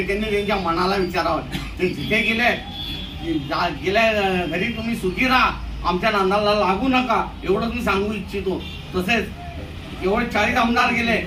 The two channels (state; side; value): identical; both; correlation 1.00